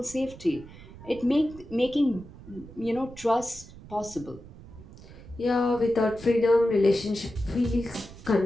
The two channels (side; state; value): right; noise; rumble, 18 dB below the sound